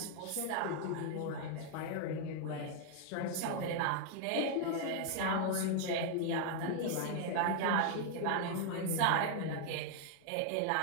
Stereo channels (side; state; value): both; different; correlation 0.00